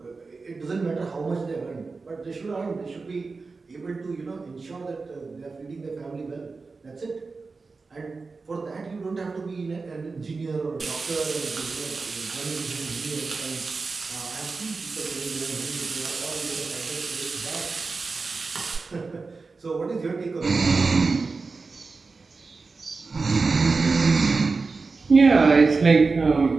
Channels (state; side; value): quieter; left; 4.2 dB